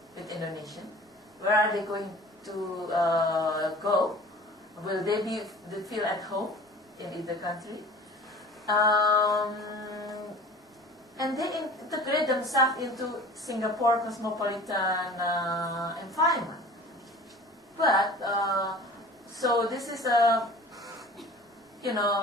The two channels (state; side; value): normal; both; correlation 0.42